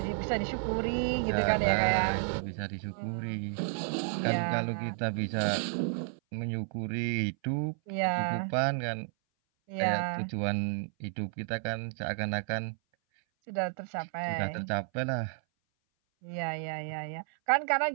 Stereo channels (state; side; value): silent; left; 57 dB below the other